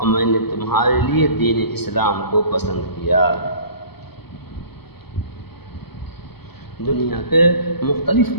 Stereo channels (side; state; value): right; late; 0.97 ms